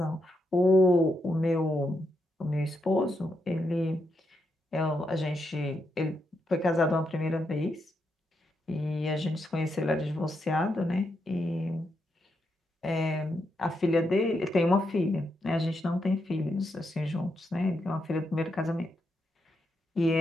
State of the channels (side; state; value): both; normal; correlation 0.82